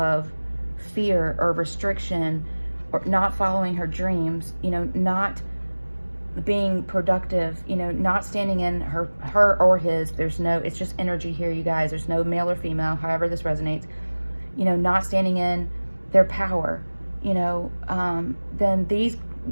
fear or restriction, or not following her dreams, not being productive, not standing in her or his, it's just energy here, you guys. There's no male or female, however this resonates, not standing in their power, then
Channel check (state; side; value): inverted; both; correlation -1.00